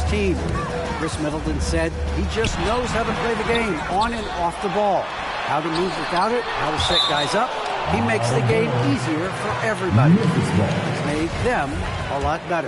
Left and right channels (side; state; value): both; identical; correlation 1.00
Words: team. Chris Middleton said he just knows how to play the game on and off the ball, how to move without it, how to set guys up. He makes the game easier for everybody. He's made them a lot